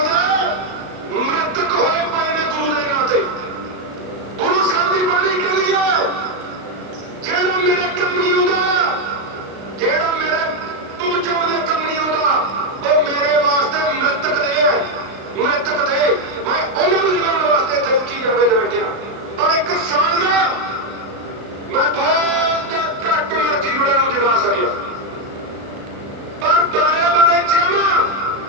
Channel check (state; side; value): late; left; 35 ms